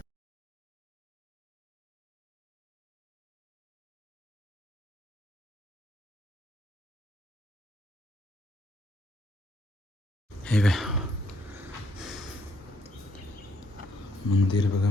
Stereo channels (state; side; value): normal; both; correlation 0.70